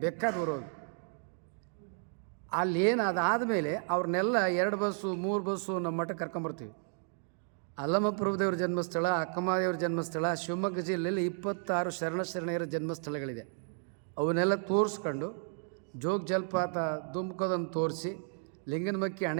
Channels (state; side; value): silent; left; 56 dB below the other